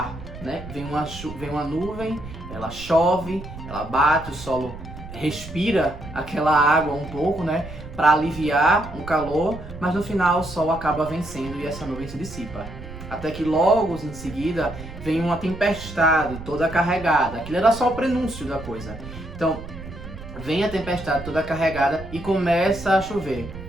né? Vem uma nuvem, ela chove, ela bate, o solo respira aquela água um pouco, né? Para aliviar o calor, mas no final o sol acaba vencendo e essa nuvem se dissipa. Até que logo em seguida vem uma tempestade toda carregada. Aquilo era só o prenúncio da coisa. Então vem a tempestade toda carregada e começa a chover.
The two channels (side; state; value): right; noise; rumble, 13 dB below the sound